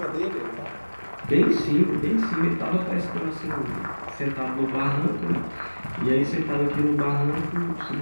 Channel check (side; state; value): both; inverted; correlation -1.00